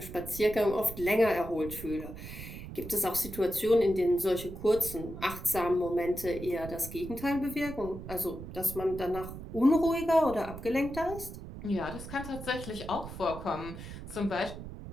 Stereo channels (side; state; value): right; noise; rumble, 11 dB below the sound